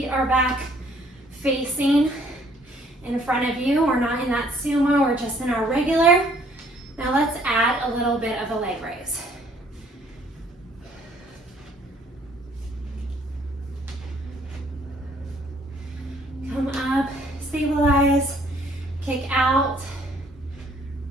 are back facing in front of you. We're not in that sumo, we're just in our regular. Now let's add a little bit of a leg raise. Come up, stabilize, kick out.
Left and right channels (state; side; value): normal; both; correlation 0.62